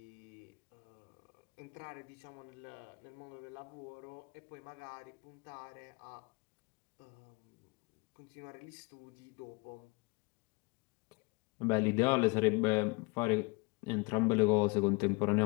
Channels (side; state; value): right; quieter; 28.5 dB